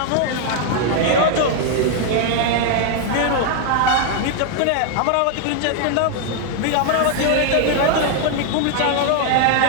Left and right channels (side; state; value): both; different; correlation 0.00